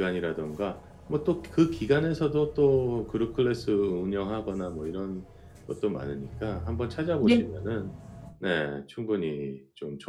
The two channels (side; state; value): both; identical; correlation 1.00